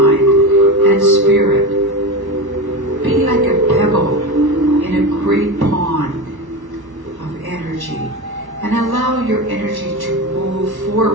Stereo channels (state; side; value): late; left; 1.1 ms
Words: and spirit, be like a pebble in a great pond of energy, and allow your energy to move